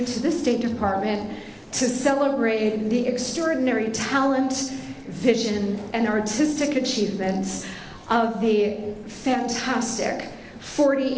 to the State Department to celebrate the extraordinary talent, vision, and artistic achievements of the fantastic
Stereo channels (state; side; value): identical; both; correlation 1.00